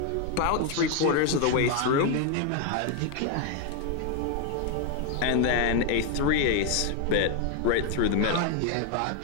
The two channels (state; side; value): different; both; correlation 0.01